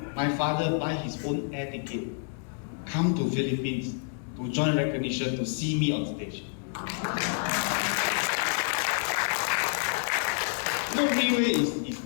my father buy his own air ticket, come to Philippines to join recognition to see me on stage. No, RIWAY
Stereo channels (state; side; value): silent; right; 59 dB below the other